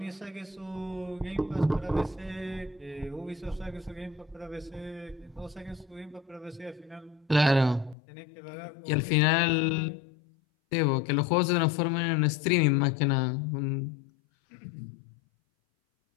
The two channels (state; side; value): drops out; right; at 8.0 s